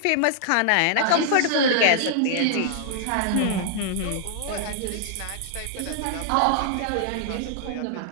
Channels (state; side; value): different; both; correlation -0.01